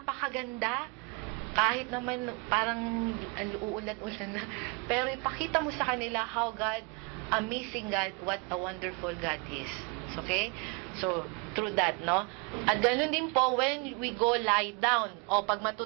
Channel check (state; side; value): quieter; left; 29.5 dB